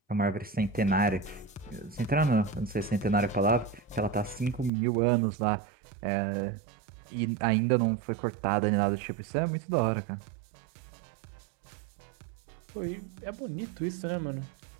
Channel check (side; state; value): left; drops out; at 4.7 s